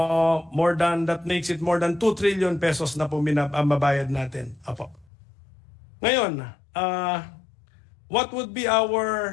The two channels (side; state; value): right; drops out; at 5.1 s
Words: makes it more than 2 trillion pesos na po mabayad natin. Apo. Ngayon, what would be